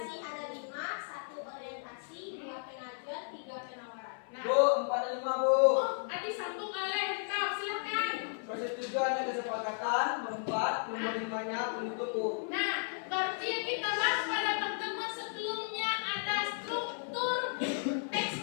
ada 5, 1 orientasi, 2 pengajuan, 3 penawaran. Nah, Bu, 4 dan 5 Bu. Adi sambung oleh kau, silakan. Persetujuan dan kesepakatan, berempat, nomor 5-nya penutup Bu. Nah, berarti yang kita bahas pada pertemuan sebelumnya ada struktur teks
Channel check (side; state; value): right; silent; 55 dB below the other